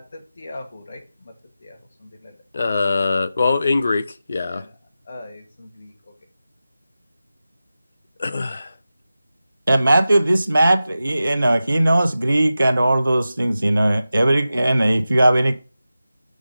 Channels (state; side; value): inverted; both; correlation -0.94